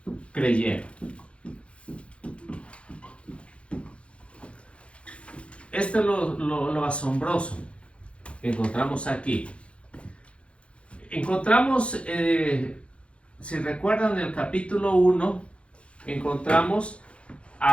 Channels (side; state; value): right; late; 0.060 ms